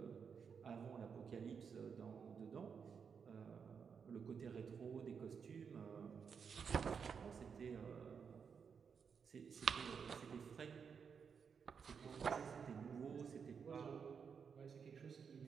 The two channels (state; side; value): quieter; left; 6.4 dB